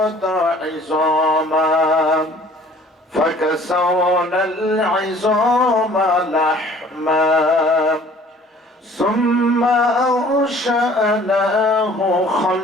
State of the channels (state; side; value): normal; both; correlation 0.52